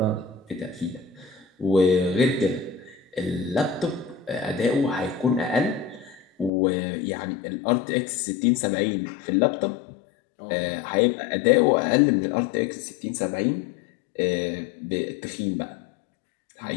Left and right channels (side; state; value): right; drops out; at 6.5 s